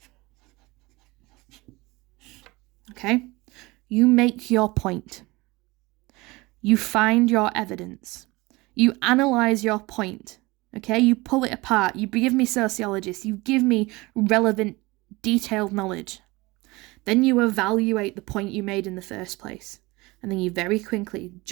Okay? You make your point. You find your evidence. You analyse your point, okay? You pull it apart. You give me sociologists. You give me relevant, detailed knowledge. Then you evaluate the point you made in the first place. And then you very quickly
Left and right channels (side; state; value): left; quieter; 22.5 dB